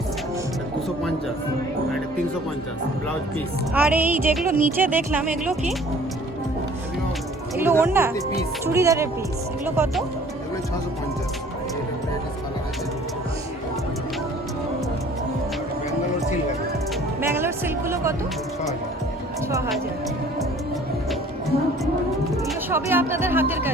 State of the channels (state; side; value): normal; both; correlation 0.52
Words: 250। আর এটা 350 ব্লাউজ পিস। আর এই যেগুলো নিচে দেখলাম এগুলো কি? এগুলো ওড়না? পিস। চুড়িদারের পিস। এগুলো কত? এগুলো 650। এটা কালার আছে। ব্যাঙ্গালোর সিল্ক আছে ব্যাঙ্গালোর সিল্কগুলো কত? 6000। 6000। এগুলো সবই আপনাদের হাতের